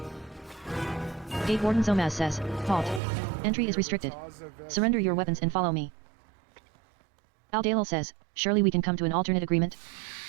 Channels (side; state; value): left; drops out; at 3.0 s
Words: Gate warden Zomaz says, halt. Entry is restricted. Surrender your weapons and follow me. Alldayerrydaybaby says, surely we can come to an alternate agreement?